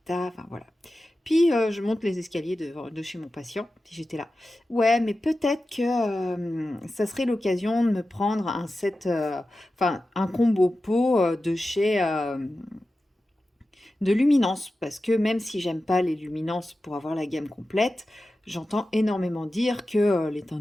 enfin voilà. » Puis je monte les escaliers de chez mon patient, puis j'étais là. Ouais, mais peut-être que ça serait l'occasion de me prendre un set, enfin un combo pot de chez de Luminance, parce que même si j'aime pas les Luminance pour avoir la gamme complète, j'entends énormément dire que les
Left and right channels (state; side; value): normal; both; correlation 0.93